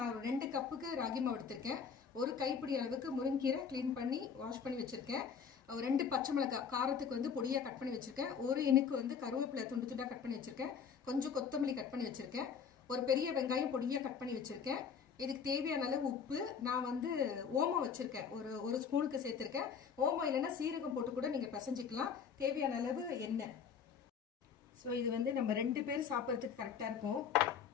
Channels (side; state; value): right; quieter; 6.7 dB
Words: 2 கப்புக்கு ராகி மாவு எடுத்திருக்கேன். ஒரு கைப்பிடி அளவுக்கு முருங்கீரை க்ளீன் பண்ணி வாஷ் பண்ணி வச்சிருக்கேன். 2 பச்சை மிளகாய் காரத்துக்கு வந்து பொடியாக கட் பண்ணி வச்சிருக்கேன். ஒரு இனுக்கு வந்து கருவேப்பிலை துண்டு துண்டாக கட் பண்ணி வச்சிருக்கேன். கொஞ்சம் கொத்தமல்லி கட் பண்ணி வச்சிருக்கேன். ஒரு பெரிய வெங்காயம் பொடியாக கட் பண்ணி வச்சிருக்கேன். இதுக்கு தேவையான அளவு உப்பு, நான் வந்து ஓமம் வச்சிருக்கேன், ஒரு ஸ்பூனுக்கு சேர்த்திருக்கேன். ஓமம் இல்லைன்னா சீரகம் போட்டு கூட நீங்க பிசைஞ்சிக்கலாம். தேவையான அளவு எண்ணெய். ஸோ இது வந்து நம்ம 2 பேர் சாப்பிட்றதுக்கு கரெக்டாக இருக்கும்.